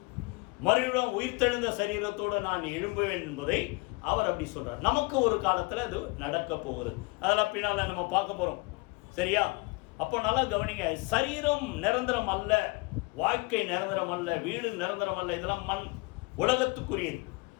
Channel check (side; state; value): right; quieter; 26.2 dB